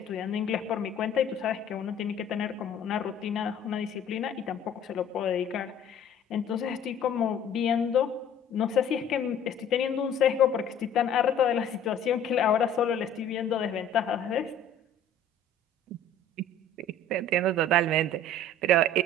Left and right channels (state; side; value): quieter; right; 3.1 dB